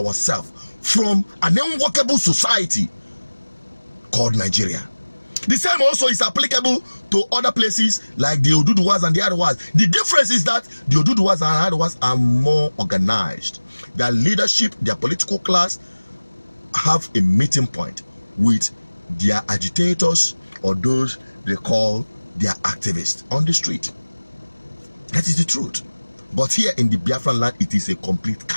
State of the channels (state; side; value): inverted; both; correlation -1.00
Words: from an unworkable society called Nigeria. The same also is applicable to other places like the Oduduwas and the Arewas. The difference is that the Oduduwas and Arewas are more organized. Their leadership, their political class have a meeting point with their agitators, or those they call their activists on the street. That is the truth. But here in the Biafran land, it is a complete